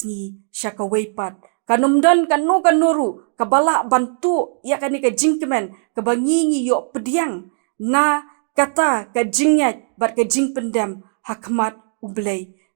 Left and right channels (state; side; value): silent; left; 66 dB below the other